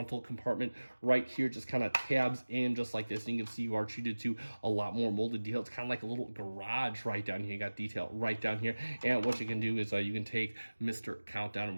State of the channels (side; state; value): both; inverted; correlation -1.00